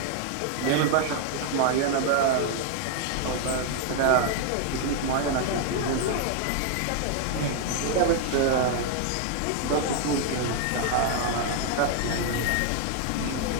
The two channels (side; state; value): both; different; correlation 0.00